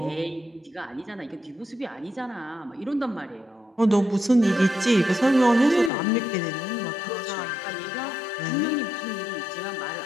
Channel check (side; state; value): right; drops out; at 5.9 s